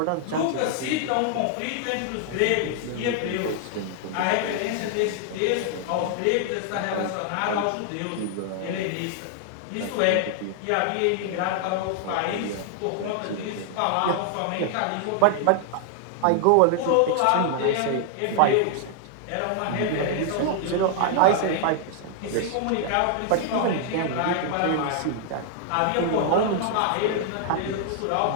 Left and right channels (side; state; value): both; different; correlation 0.00